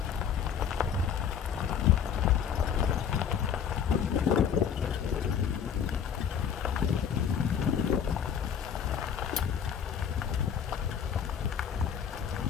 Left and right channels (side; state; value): right; quieter; 7.8 dB